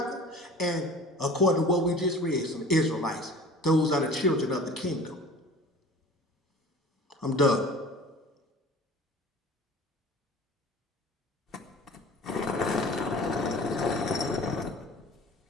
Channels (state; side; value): normal; both; correlation 0.43